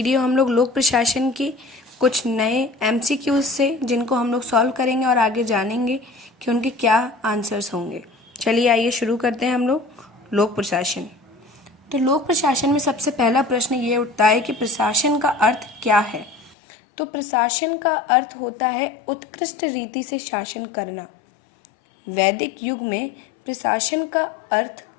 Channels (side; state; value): right; drops out; at 16.6 s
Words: हम लोग लोक प्रशासन की कुछ नए एमसीक्यूज से, जिनको हम लोग सॉल्व करेंगे और आगे जानेंगे कि उनके क्या आंसर्स होंगे। चलिए आइए शुरू करते हैं हम लोग लोक प्रशासन। तो लोक प्रशासन में सबसे पहला प्रश्न ये उठता है कि प्रशासन का अर्थ क्या है। तो प्रशासन का अर्थ होता है उत्कृष्ट रीति से शासन करना। वैदिक युग में प्रशासन का अर्थ